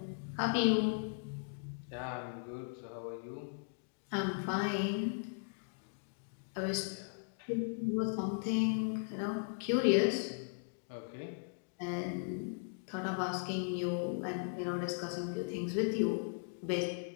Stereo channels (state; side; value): silent; right; digital silence